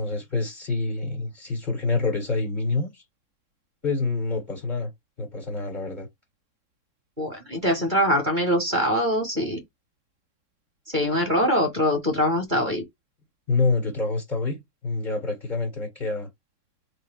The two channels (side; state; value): left; late; 3.6 ms